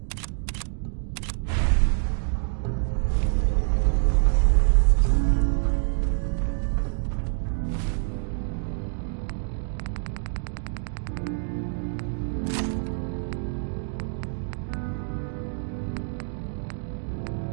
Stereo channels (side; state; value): left; silent; digital silence